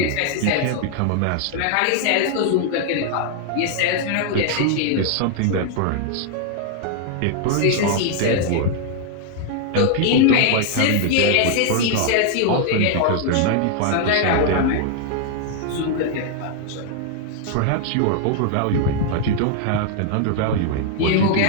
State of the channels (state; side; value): different; both; correlation 0.00